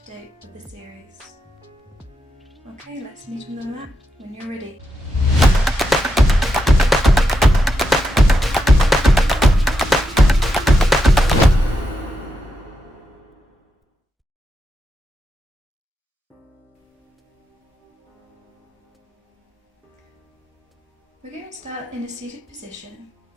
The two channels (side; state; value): both; normal; correlation 0.84